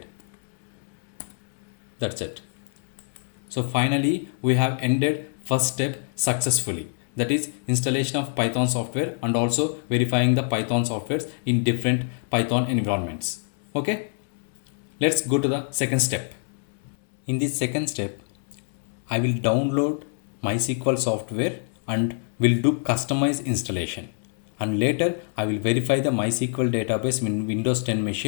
That's it. So finally we have ended first step successfully. That is installation of Python software and also verifying the Python softwares in different Python environments. Okay. Let's go to the second step. In this second step, I will download MySQL software and will do customized installation. And later I will verify the MySQL database in Windows 10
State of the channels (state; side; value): silent; right; 61 dB below the other